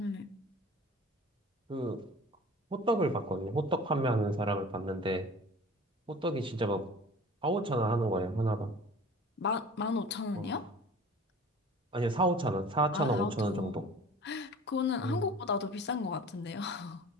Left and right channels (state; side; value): normal; both; correlation 0.43